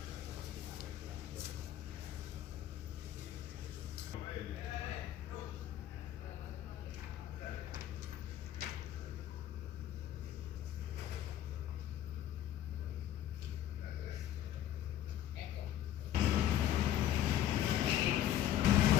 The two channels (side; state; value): right; quieter; 11.7 dB